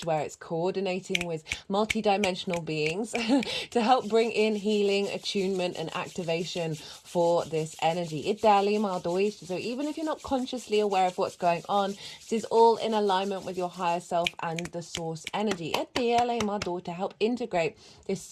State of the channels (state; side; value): identical; both; correlation 1.00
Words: where it's coordinating with multi-dimensional beings to help bring in healing, attunement, and activation for this energy. So even if you're not consciously aware of what's going on, this is all in alignment with your higher self and the source energy. To help integrate this